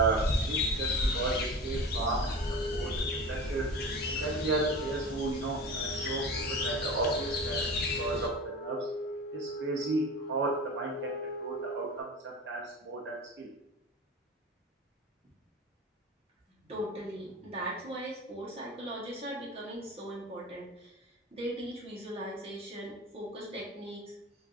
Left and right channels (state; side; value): normal; both; correlation 0.33